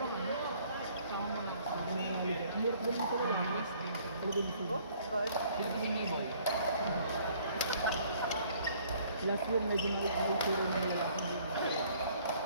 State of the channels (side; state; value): both; inverted; correlation -0.59